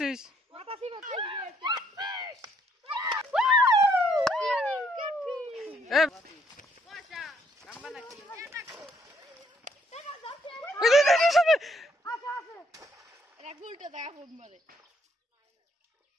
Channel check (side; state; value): both; normal; correlation 0.69